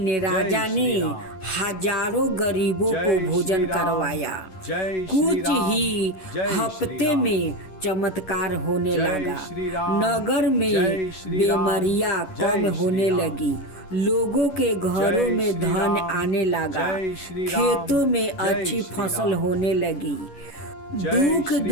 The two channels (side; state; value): right; late; 11 ms